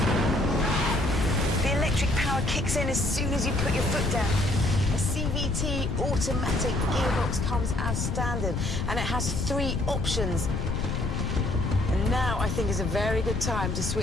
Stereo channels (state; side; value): noise; left; rumble, 1 dB below the sound